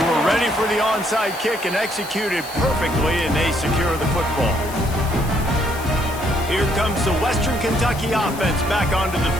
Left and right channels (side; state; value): left; noise; hiss, 15 dB below the sound